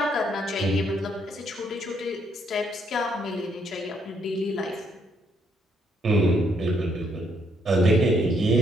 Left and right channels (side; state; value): both; normal; correlation 0.72